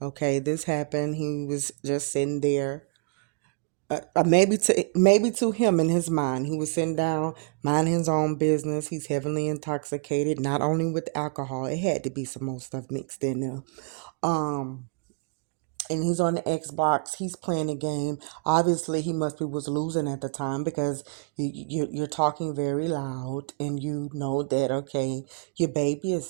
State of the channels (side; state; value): left; quieter; 35.3 dB